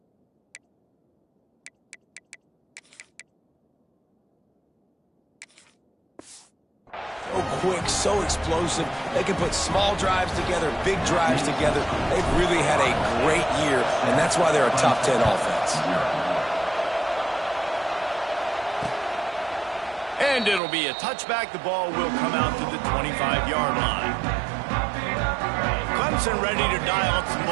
So quick, so explosive. They can put small drives together, big drives together. They've really had a great year, and that's why they're a top 10 offense. And it'll be a touchback. The ball will come out to the 25-yard line. Clemson ready to dial up some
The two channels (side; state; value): left; drops out; at 20.6 s